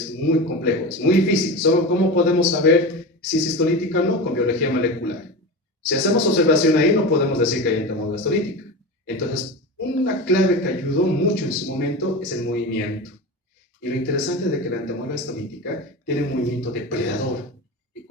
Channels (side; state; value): both; normal; correlation 0.26